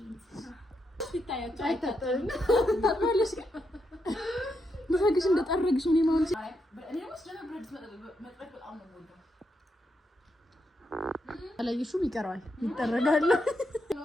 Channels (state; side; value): normal; both; correlation 0.82